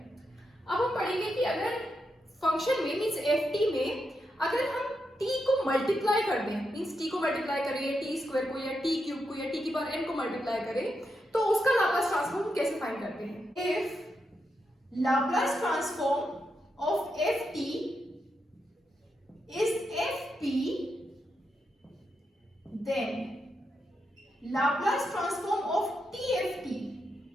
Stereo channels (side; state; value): both; normal; correlation 0.84